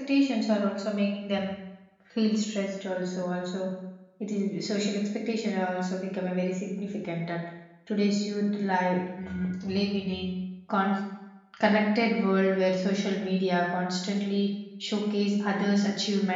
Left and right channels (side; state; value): both; identical; correlation 1.00